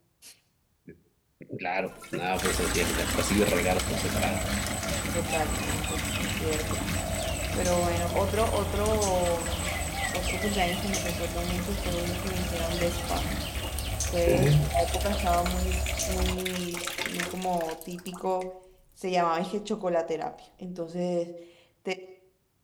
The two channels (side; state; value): both; identical; correlation 1.00